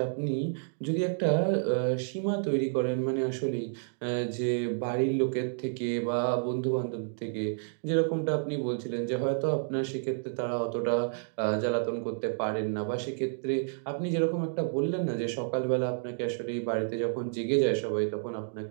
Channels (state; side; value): silent; left; digital silence